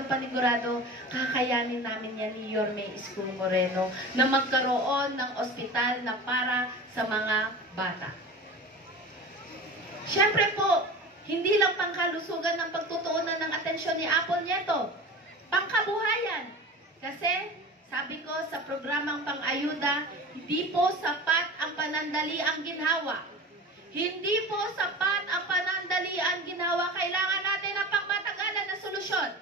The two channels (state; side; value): normal; both; correlation 0.34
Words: kakayanin namin yan ni Yorme Isko Moreno na magkaroon ng ospital na para sa mga bata. Siyempre po, hindi lang pangkalusugan ng pagtutuunan ng atensyon ni Apple Nieto, pangkabuhayan. Kasi, sabi ko sa programang pang-ayuda, hindi po sapat ang panandali ang ginhawa. Hindi po sapat ang panandali ang ginawa. Kailangan natin ng pangmatagalan na solusyon.